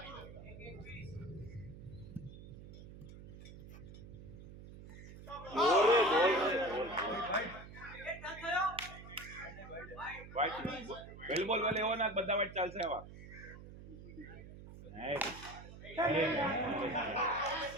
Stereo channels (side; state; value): right; noise; hum, 15 dB below the sound